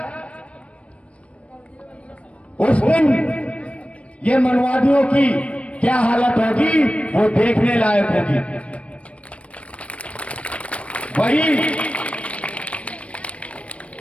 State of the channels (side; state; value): right; late; 0.063 ms